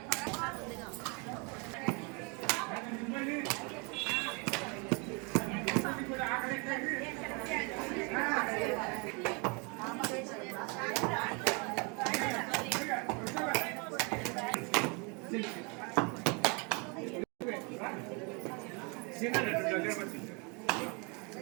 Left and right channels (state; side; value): quieter; left; 32.3 dB